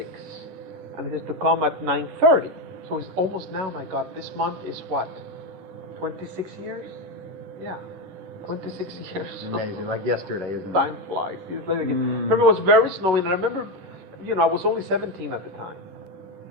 And it is to come at 9:30. So it's almost now, my God, this month is what? 26 years? Yeah. 26 years. Amazing, like yesterday, isn't it? Time flies. Remember, it was very snowy, and I remember, I was only 17 at the time.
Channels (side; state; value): left; late; 11 ms